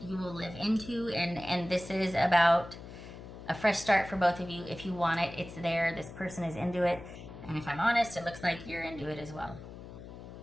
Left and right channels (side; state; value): left; noise; hum, 14 dB below the sound